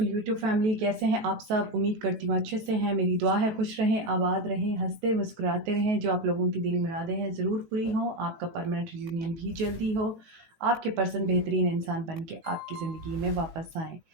यूट्यूब फैमिली, कैसे हैं आप सब? उम्मीद करती हूँ अच्छे से हैं। मेरी दुआ है खुश रहें, आबाद रहें, हंसते मुस्कुराते रहें। जो आप लोगों की दिली मुरादें हैं ज़रूर पूरी हों, आपका परमानेंट रियूनियन भी जल्दी हो, आपके पर्सन बेहतरीन इंसान बन के आपकी ज़िंदगी में वापस आएँ।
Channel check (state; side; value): late; left; 18 ms